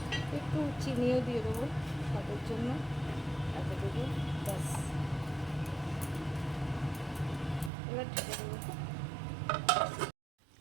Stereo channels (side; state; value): left; drops out; at 7.7 s